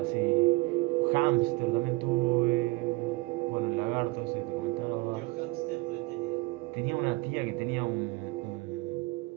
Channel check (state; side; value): quieter; left; 22.5 dB